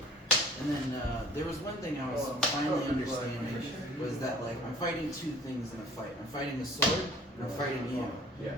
And then there was one thing I was finally understanding was that like I'm fighting two things in a fight. I'm fighting a sword and I'm fighting you. Yeah.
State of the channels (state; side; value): normal; both; correlation 0.50